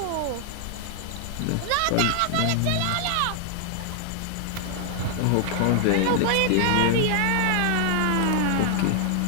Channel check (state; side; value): different; both; correlation 0.00